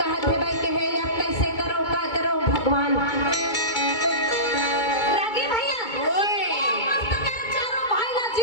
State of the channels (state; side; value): late; right; 2.2 ms